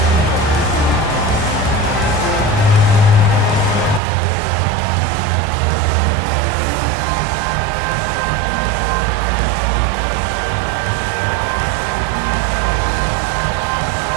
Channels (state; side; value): drops out; left; at 4.0 s